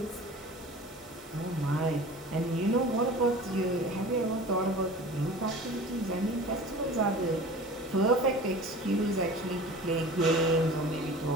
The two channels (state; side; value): normal; both; correlation 0.39